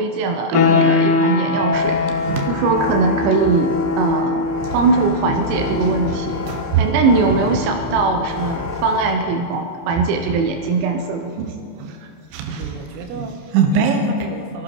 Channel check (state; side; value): late; left; 30 ms